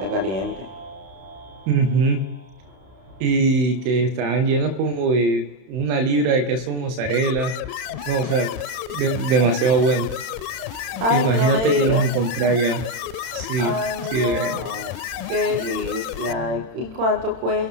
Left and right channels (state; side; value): late; left; 31 ms